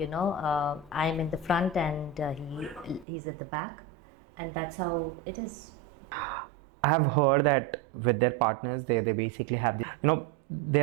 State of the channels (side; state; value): left; drops out; at 3.1 s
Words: in the front, and he's at the back, and that's how it is. I have heard that with their partners, they basically have